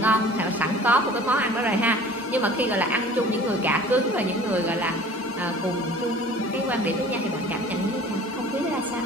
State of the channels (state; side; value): normal; both; correlation 0.46